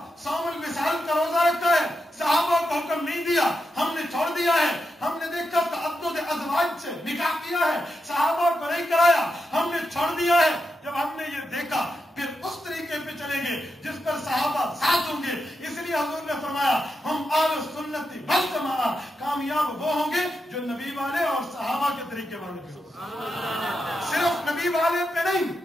صوم الوصال کا روزہ رکھا ہے، صحابہ کو حکم نہیں دیا، ہم نے چھوڑ دیا ہے. ہم نے دیکھا تعدد ازواج سے نکاح کیا ہے، صحابہ کو نہیں کرایا، ہم نے چھوڑ دیا ہے. جب ہم نے یہ دیکھا پھر اس طریقے پہ چلیں گے جس پر صحابہ ساتھ ہوں گے. اس لیے حضور نے فرمایا ہم اہل سنت والجماعہ، کامیاب وہ ہوں گے جو نبی والے اور صحابہ کے طریقے والے ہوں. صرف نبی والے پہ نہیں،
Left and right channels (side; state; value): both; normal; correlation 0.87